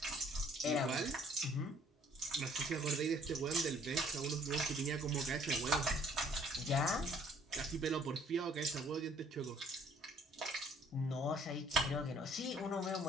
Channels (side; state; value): both; normal; correlation 0.59